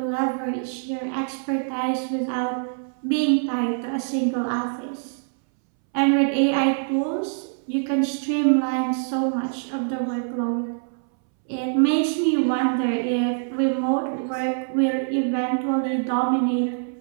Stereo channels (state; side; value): silent; left; 63 dB below the other